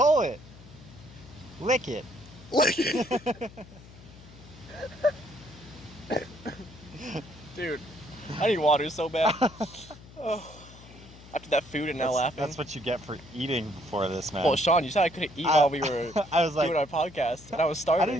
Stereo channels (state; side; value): noise; left; hum, 20 dB below the sound